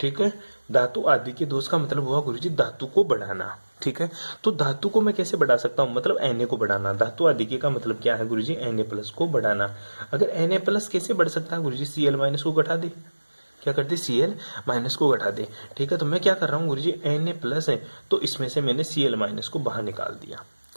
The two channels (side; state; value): both; inverted; correlation -1.00